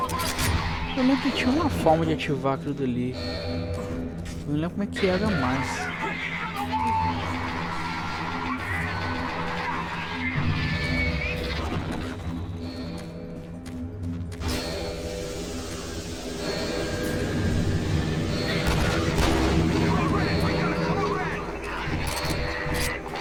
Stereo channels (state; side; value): identical; both; correlation 1.00